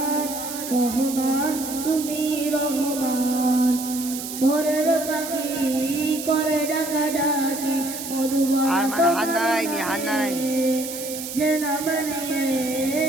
রহমান তুমি রহমান ভোরের পাখি করে ডাকা ডাকি মধুবন যে নাম নিয়ে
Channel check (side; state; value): right; noise; hiss, 8 dB below the sound